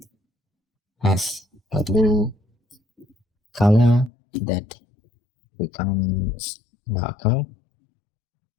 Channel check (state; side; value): drops out; right; at 4.1 s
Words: has a blue color that becomes darker